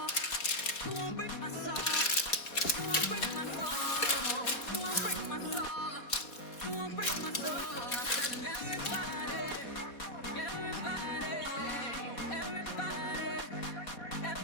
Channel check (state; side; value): late; right; 4.0 ms